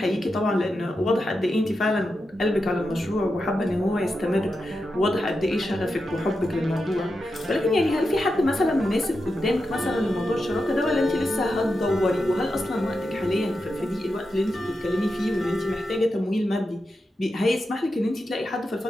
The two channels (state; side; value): normal; both; correlation 0.89